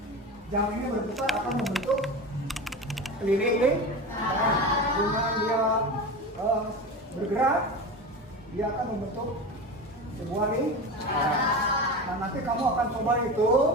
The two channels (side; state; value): both; normal; correlation 0.27